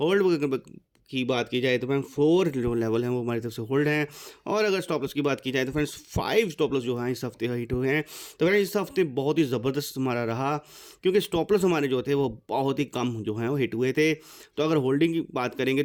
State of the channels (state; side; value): identical; both; correlation 1.00